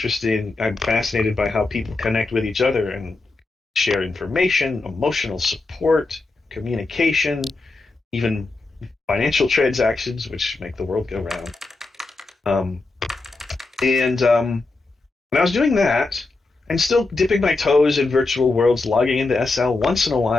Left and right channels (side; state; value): right; quieter; 3.4 dB